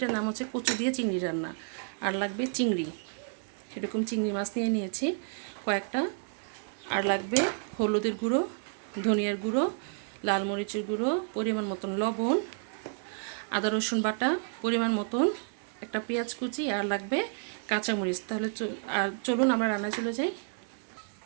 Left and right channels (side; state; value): left; silent; 57 dB below the other